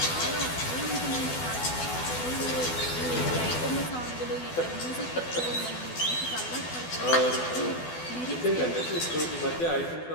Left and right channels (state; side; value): late; right; 12 ms